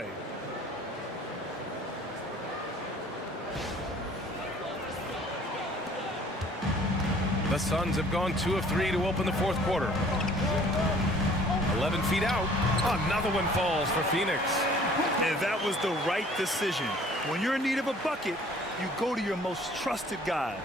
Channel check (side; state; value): both; normal; correlation 0.54